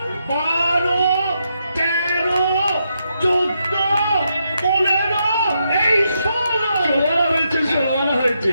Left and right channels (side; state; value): both; inverted; correlation -0.81